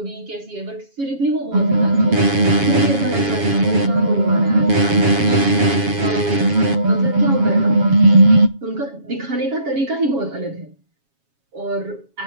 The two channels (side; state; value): left; late; 7.3 ms